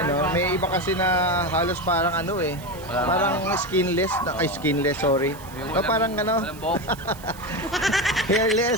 oh. May iba kasi na halos parang parang skinless, sorry. O parang Walang buhok.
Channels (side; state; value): right; noise; hiss, 20 dB below the sound